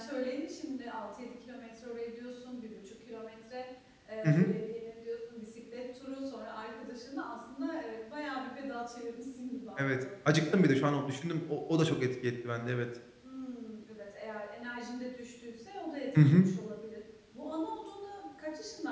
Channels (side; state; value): both; identical; correlation 1.00